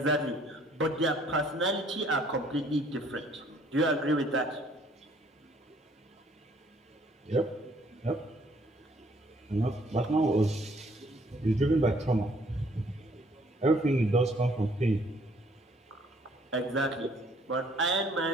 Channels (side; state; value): both; normal; correlation 0.62